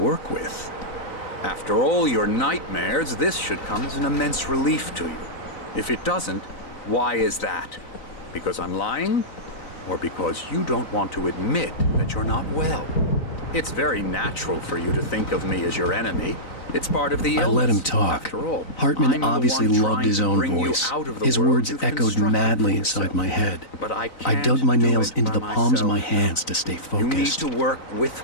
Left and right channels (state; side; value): late; right; 3.9 ms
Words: with. After all your nightmares, this should come as an immense relief to you. If it doesn't, why is that? Because I'm lying? Or because you don't want to admit that you're not well? It's very natural for you to think of me as your enemy. It's part of the illness. I let him talk. After all, Hartman obviously loved his own voice. His words echoed madly inside my head. But I dug my nails into the palms of my hands to stay focused. You need to work with